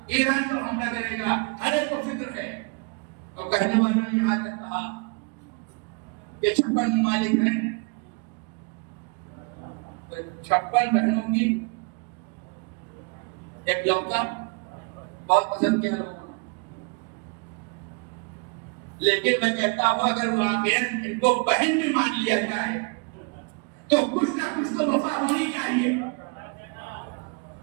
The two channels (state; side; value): quieter; left; 34.7 dB